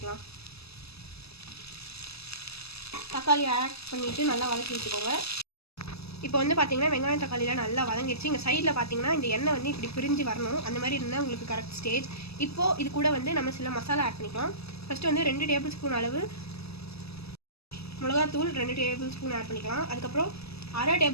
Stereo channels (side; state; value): right; late; 0.78 ms